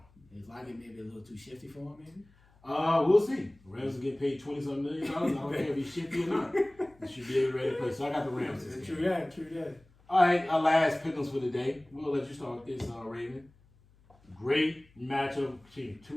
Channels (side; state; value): left; noise; hum, 30 dB below the sound